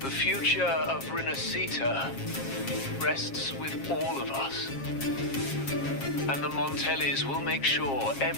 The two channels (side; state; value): right; late; 7.4 ms